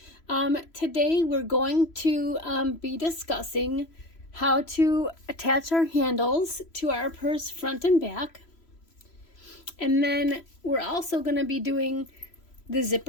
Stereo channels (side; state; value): right; late; 3.0 ms